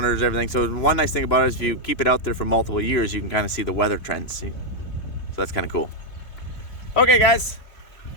everything. So one nice thing about it is if you keep it out there for multiple years, you can kind of see the weather trends. See? So that's kind of cool. Okay guys,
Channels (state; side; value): late; right; 2.9 ms